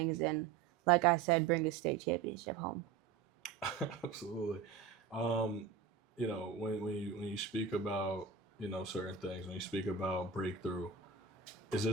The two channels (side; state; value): left; quieter; 6.2 dB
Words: and, like I said, bring a state championship home. Absolutely. When you speak about, certain things, when you speak about breakthrough, is